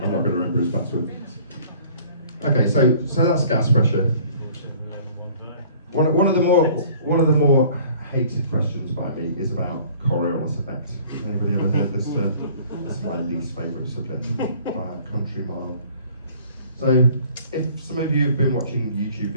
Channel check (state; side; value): inverted; both; correlation -0.52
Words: I'm not going to remember his password. Okay, so that's gas pressure. One of the more hated questions by me is about Coriolis effect. Anybody ever heard this? This is my least favourite subject by a country mile. So, if some of you have been watching YouTube